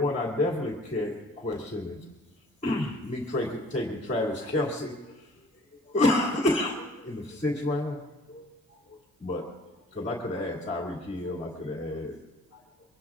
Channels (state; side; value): normal; both; correlation 0.53